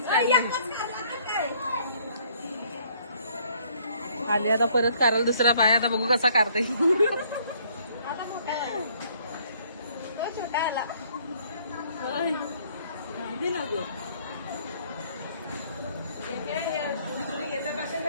आले. आता परत करायला दुसरा पाय. आता बघू कसा काढते.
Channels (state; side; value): inverted; both; correlation -0.62